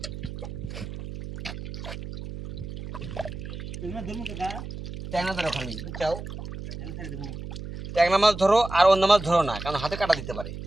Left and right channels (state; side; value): noise; right; hum, 9 dB below the sound